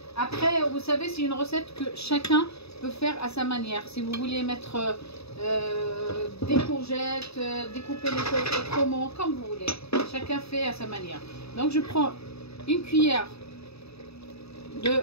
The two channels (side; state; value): right; late; 0.78 ms